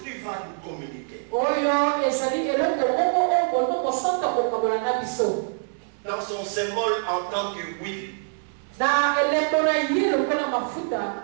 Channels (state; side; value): silent; left; digital silence